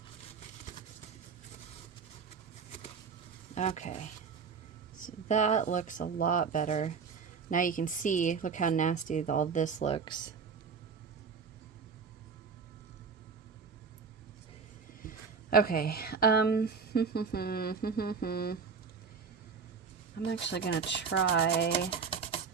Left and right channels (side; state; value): left; quieter; 5.6 dB